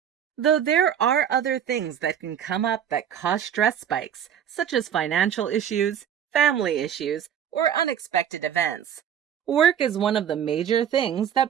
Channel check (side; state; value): left; quieter; 9.2 dB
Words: Though there are other things that can come up that cause stress spikes, such as financial issues, family issues, or unexpected events, work is one of the major things